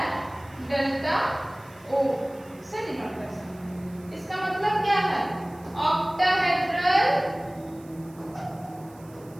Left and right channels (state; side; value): noise; right; hiss, 26 dB below the sound